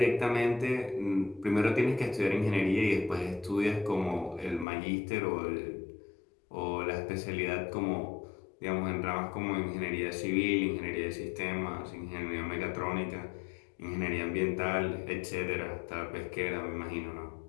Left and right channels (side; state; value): right; drops out; at 4.7 s